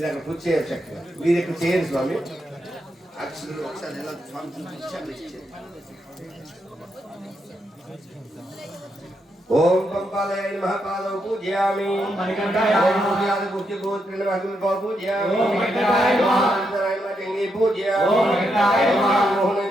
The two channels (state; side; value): normal; both; correlation 0.81